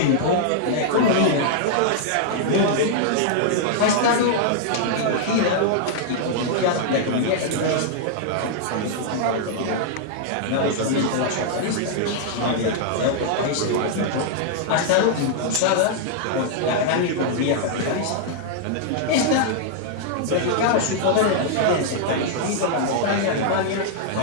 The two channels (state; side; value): different; both; correlation -0.01